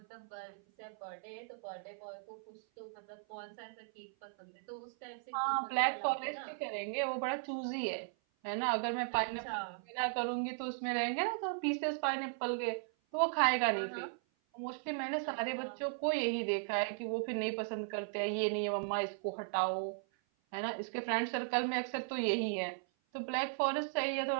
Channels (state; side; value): silent; left; 53 dB below the other